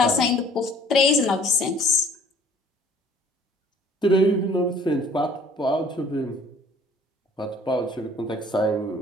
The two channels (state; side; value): normal; both; correlation 0.54